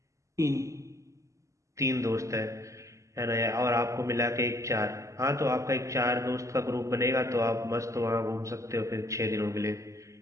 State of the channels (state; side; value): late; left; 0.15 ms